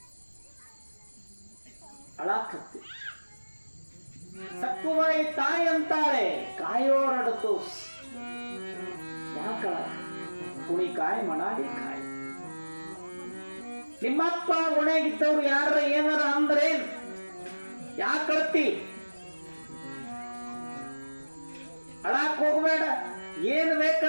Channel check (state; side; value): inverted; both; correlation -1.00